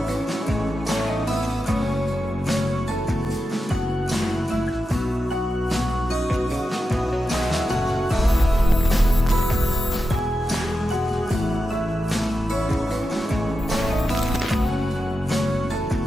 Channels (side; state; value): both; normal; correlation 0.90